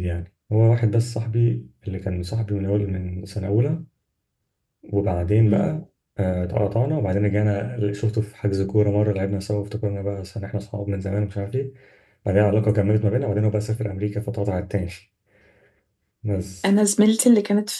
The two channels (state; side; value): identical; both; correlation 1.00